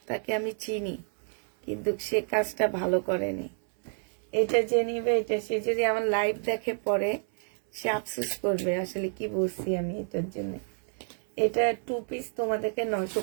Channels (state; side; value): silent; left; 58 dB below the other